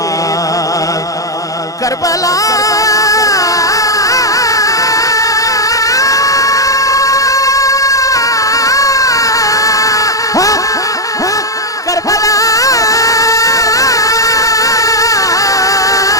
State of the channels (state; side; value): late; right; 0.17 ms